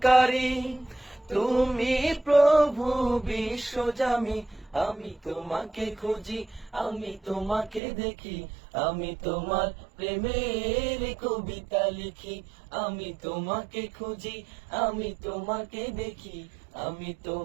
তুমি প্রভু বিশ্বজামি। আমি তোমাকে খুঁজি, আমি তোমাকে দেখি, আমি তোমার প্রেমের কবিতা লিখি। আমি তোমাকে খুঁজি, আমি তোমাকে দেখি, আমি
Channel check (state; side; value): drops out; left; at 7.8 s